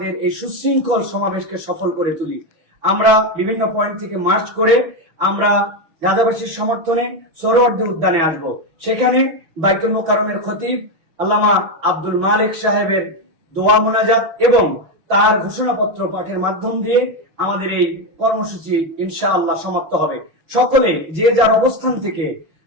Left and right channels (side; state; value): left; late; 6.1 ms